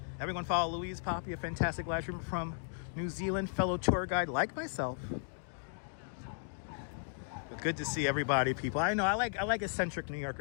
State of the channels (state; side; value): silent; right; digital silence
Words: Everyone follow Louise Poppy, a fantastic live streamer from New Zealand. Fellow tour guide like myself. But good to see everybody, people. I know, I like eccentric New